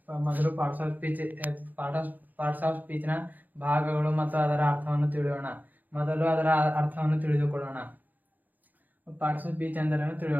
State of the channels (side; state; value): left; late; 0.083 ms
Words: ಮೊದಲು ಪಾರ್ಟ್ಸ್ ಆಫ್ ಸ್ಪೀಚ್ನ ಭಾಗಗಳು ಮತ್ತು ಅದರ ಅರ್ಥವನ್ನು ತಿಳಿಯೋಣ. ಮೊದಲು ಅದರ ಅರ್ಥವನ್ನು ತಿಳಿದುಕೊಳ್ಳೋಣ. ಪಾರ್ಟ್ಸ್ ಆಫ್ ಸ್ಪೀಚ್ ಎಂದರೇನು